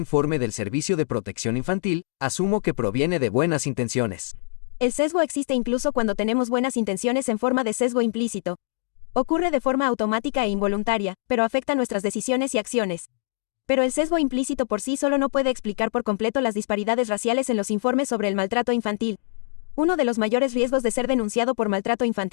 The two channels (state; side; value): silent; right; digital silence